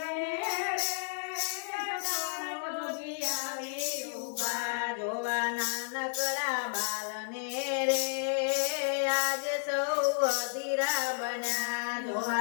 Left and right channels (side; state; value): right; silent; digital silence